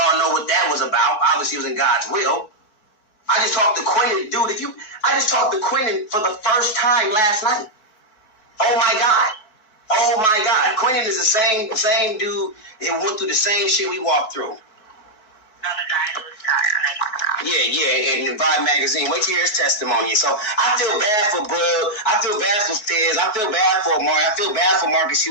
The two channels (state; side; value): late; right; 4.6 ms